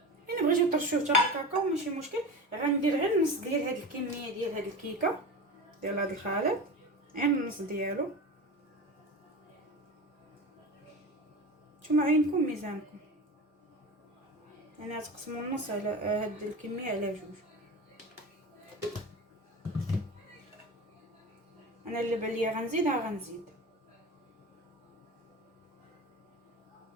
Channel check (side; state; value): both; normal; correlation 0.29